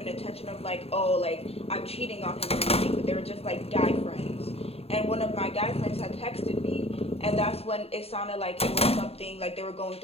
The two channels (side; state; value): right; late; 0.29 ms